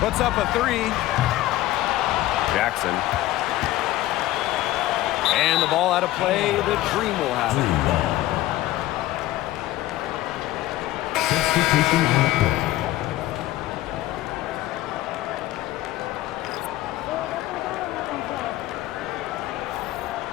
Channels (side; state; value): right; quieter; 15.8 dB